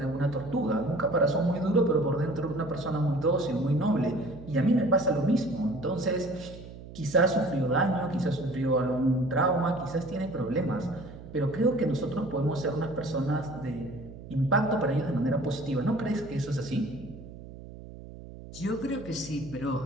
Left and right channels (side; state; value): right; noise; hum, 15 dB below the sound